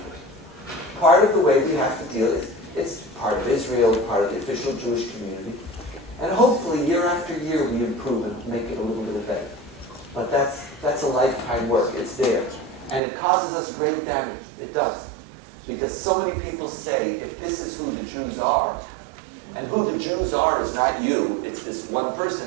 Part of the way we have to deal is, it's part of Israel, part of the official Jewish community. And hopefully year after year we improve and make it a little bit better. But that's a lifetime work. It's there. And it causes us great damage. It does. Because so many people say, if this is who the Jews are, and who the Jews are is not you, it's this one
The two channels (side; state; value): left; drops out; at 13.0 s